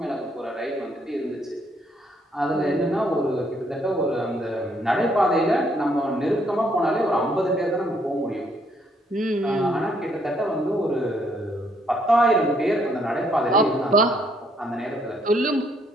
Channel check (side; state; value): both; normal; correlation 0.70